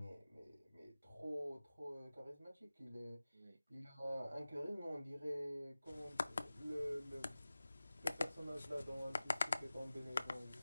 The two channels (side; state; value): both; inverted; correlation -0.97